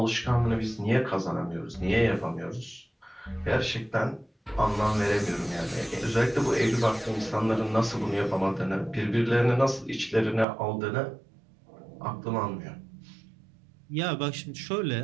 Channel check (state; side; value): drops out; left; at 10.5 s